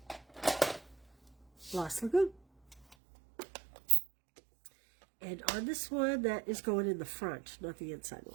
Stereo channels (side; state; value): left; drops out; at 3.0 s